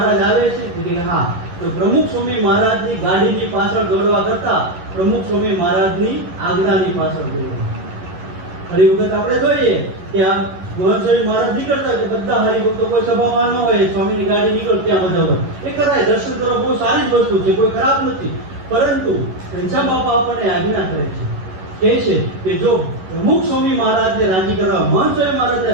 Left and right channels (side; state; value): left; late; 11 ms